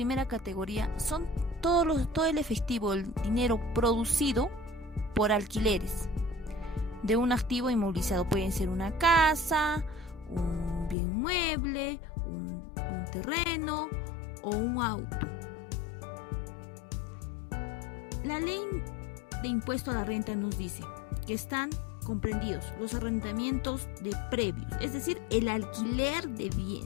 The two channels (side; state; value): right; drops out; at 11.0 s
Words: categoría son todo el efectivo, el dinero producido por alquileres de un activo inmovilizado. Pueden ser una casa, un bien mueble, un terreno o un auto. La ley de impuesto a la renta nos dice que están comprendidos los arrendamientos de previos, es decir, el alquiler de